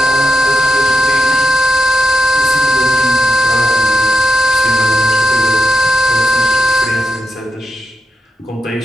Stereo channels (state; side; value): normal; both; correlation 0.87